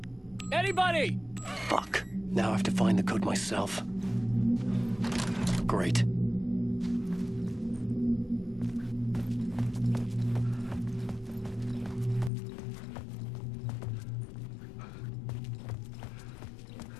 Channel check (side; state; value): right; drops out; at 12.3 s